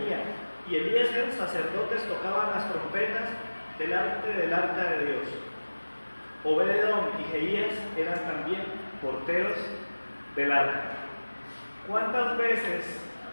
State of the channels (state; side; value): inverted; both; correlation -1.00